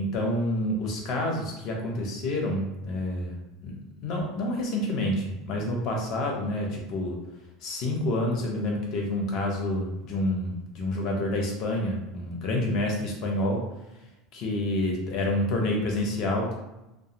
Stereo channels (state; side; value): normal; both; correlation 0.31